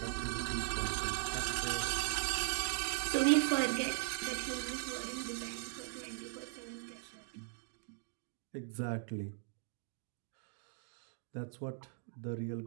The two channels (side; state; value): left; silent; digital silence